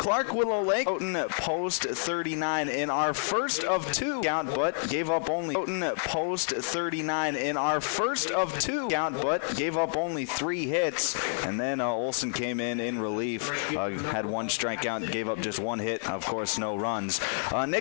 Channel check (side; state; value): right; silent; digital silence